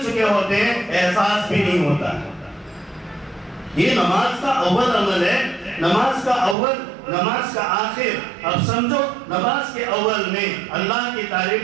چکے ہوتے ہیں, احساس بھی نہیں ہوتا. یہ نماز کا اول عمل ہے, نماز کا اول, نماز کا آخر. اب سمجھو, نماز کے اول میں اللہ کی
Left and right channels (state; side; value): drops out; left; at 6.6 s